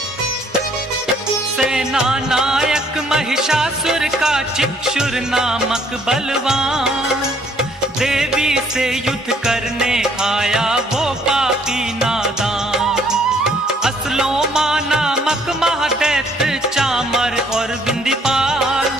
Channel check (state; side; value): normal; both; correlation 0.64